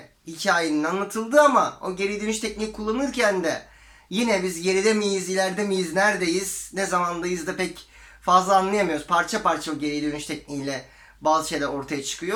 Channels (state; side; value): identical; both; correlation 1.00